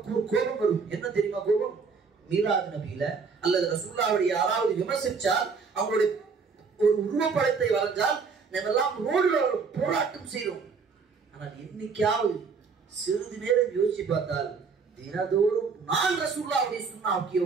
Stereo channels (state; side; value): quieter; left; 5.2 dB